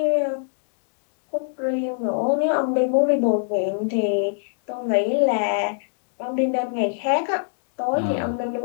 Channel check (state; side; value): silent; right; digital silence